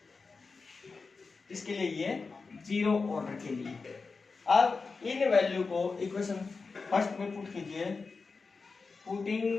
इसके लिए ये जीरो ऑर्डर के लिए। अब इन वैल्यू को इक्वेशन फर्स्ट में पुट कीजिए,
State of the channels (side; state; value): right; quieter; 4.4 dB